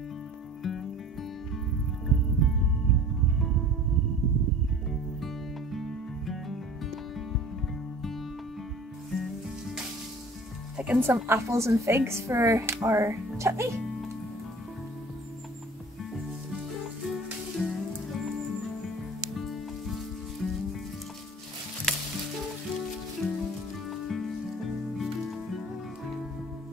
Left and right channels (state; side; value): normal; both; correlation 0.45